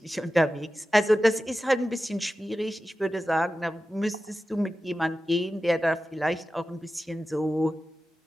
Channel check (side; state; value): both; normal; correlation 0.93